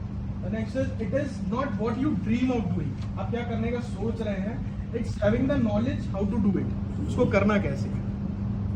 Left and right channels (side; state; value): both; identical; correlation 1.00